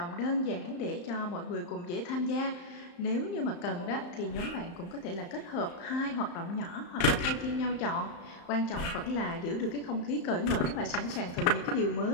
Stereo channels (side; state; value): right; late; 35 ms